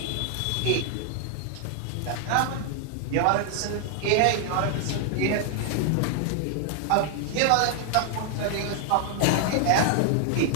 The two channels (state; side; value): different; both; correlation 0.00